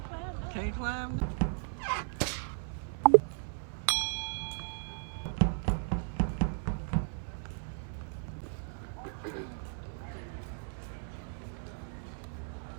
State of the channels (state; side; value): silent; left; 54 dB below the other